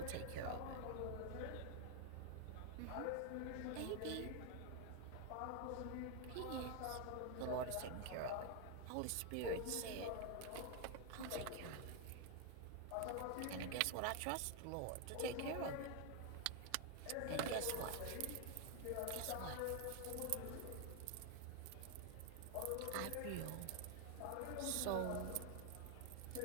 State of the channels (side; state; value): both; different; correlation 0.01